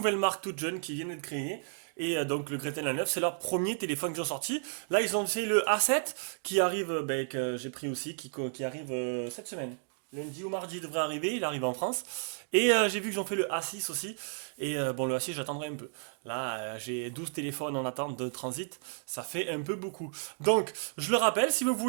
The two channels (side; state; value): left; silent; 55 dB below the other